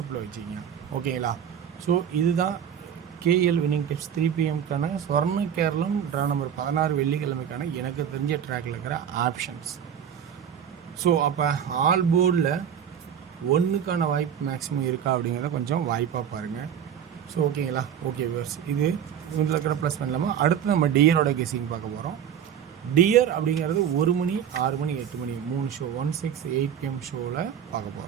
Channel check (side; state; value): left; quieter; 8.8 dB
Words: வச்சுக்கிங்க. ஓகேங்களா. ஸோ இதுதான் கேஎல் வின்னிங் டிப்ஸ் 3 PM சொர்ண கேரளம் ட்ரா நம்பர் 16 வெள்ளிக்கிழமைக்கான எனக்கு தெரிஞ்ச ட்ராக்கில் இருக்கிற ஆப்ஷன்ஸ். ஸோ அப்போ ஆல் போர்டில் ஒன்றுக்கான வாய்ப்பு மேக்ஸிமம் இருக்கா அப்படிங்கிறத கொஞ்சம் வாய்ப்பாக பாருங்கள். ஸோ ஓகேங்களா? ஓகே வியூவர்ஸ், இது இதில் இருக்கிற ப்ளஸ் பண்ணலாமா? அடுத்து நம்ம டியரோட கெஸிங் பார்க்க போகிறோம். டியர் அப்படிங்கிறது 1 மணி, 6 மணி, 8 மணி 3 ஷோ 1, 6, 8 PM ஷோவில் பார்க்க